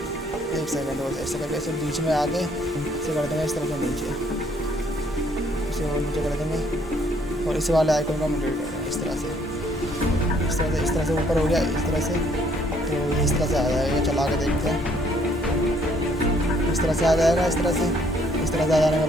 एक सेकंड और ऐसे करके इसे बीच में आके इसे कर देंगे इस तरह से नीचे, इसे और नीचे कर देंगे और इस वाले आइकन को हम डिलीट कर देंगे इस तरह से। इस तरह से ऊपर हो गया इस तरह से। तो इस तरह से आ जाएगा, चला के देखते हैं। इस तरह से आ जाएगा, इस तरह से आ जाने के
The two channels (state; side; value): normal; both; correlation 0.65